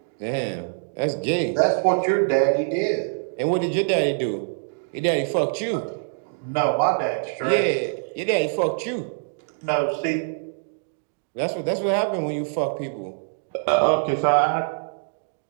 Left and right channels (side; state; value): left; silent; digital silence